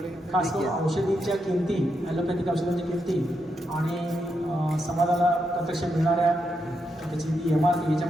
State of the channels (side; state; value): both; normal; correlation 0.83